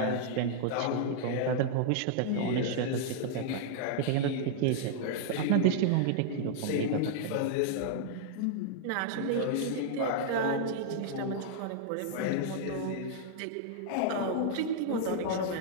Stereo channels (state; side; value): different; both; correlation -0.01